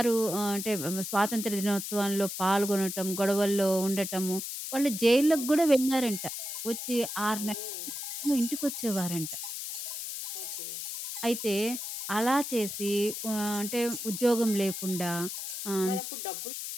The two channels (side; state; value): left; noise; hiss, 5 dB below the sound